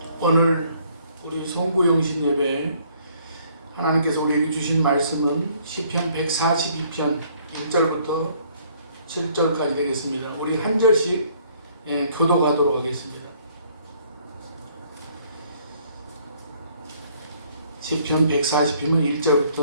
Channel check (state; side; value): inverted; both; correlation -0.62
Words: 오늘 우리 송구영신 예배 하나님께서 우리에게 주신 말씀은 시편 142편 1절부터 7절까지 되겠습니다. 우리 한 절씩 교독하도록 하겠습니다. 시편 140편은